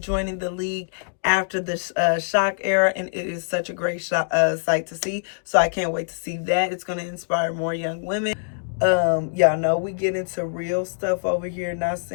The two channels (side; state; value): right; silent; digital silence